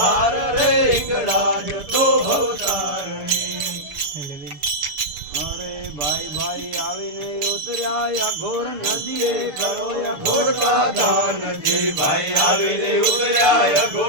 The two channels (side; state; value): left; late; 6.7 ms